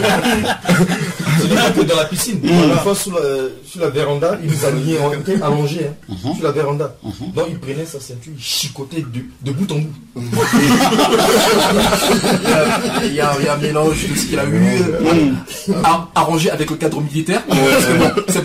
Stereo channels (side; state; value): both; identical; correlation 1.00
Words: C'est pas que dans la piscine. Une fois sur la véranda, il nous a mis allongés sur la véranda. Donc il prenait sa ceinture, il chicotait de bout en bout. Il y a un mélange de ce qu'il a eu arrangé avec le cadre militaire.